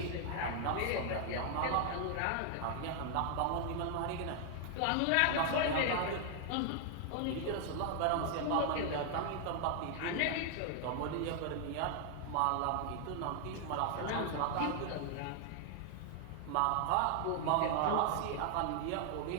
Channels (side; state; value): both; different; correlation 0.00